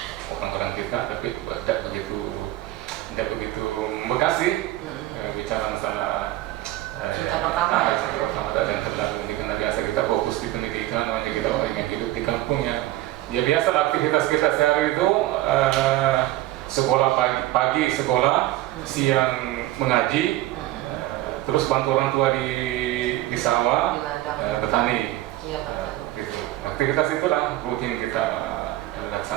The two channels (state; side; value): quieter; left; 16.0 dB